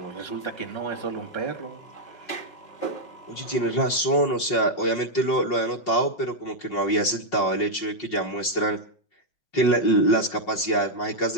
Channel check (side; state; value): right; late; 5.6 ms